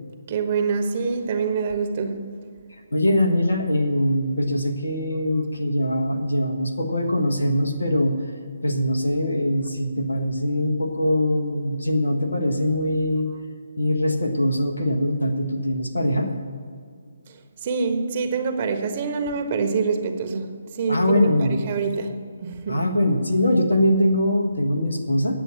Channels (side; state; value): both; inverted; correlation -0.81